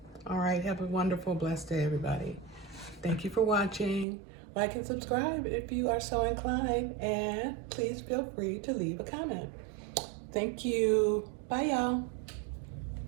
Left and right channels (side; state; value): left; drops out; at 4.0 s